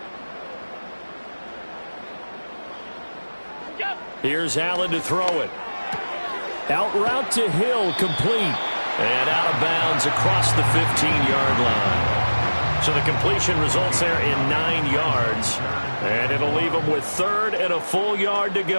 Here's Allen to throw it. Out route to Hill, complete. And out of bounds across the 15-yard line. So the completion results there in 9 yards. And it'll leave them with 3rd and a full yard to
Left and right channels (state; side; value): inverted; both; correlation -1.00